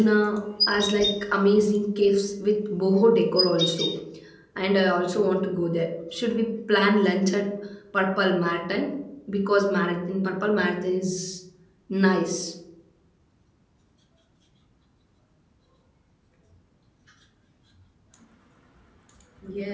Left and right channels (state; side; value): identical; both; correlation 1.00